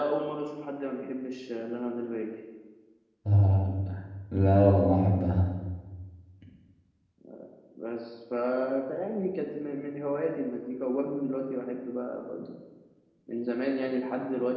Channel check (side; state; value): both; identical; correlation 1.00